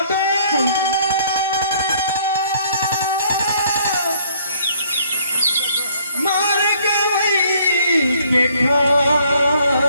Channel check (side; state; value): both; inverted; correlation -0.62